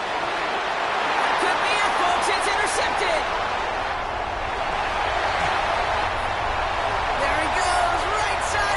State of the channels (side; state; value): both; identical; correlation 1.00